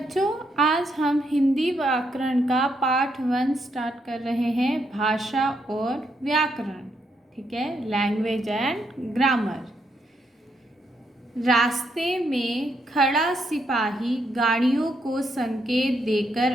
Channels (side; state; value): both; normal; correlation 0.77